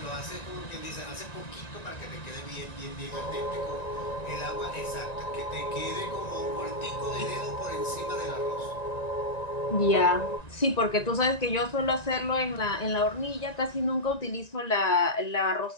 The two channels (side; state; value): right; late; 1.9 ms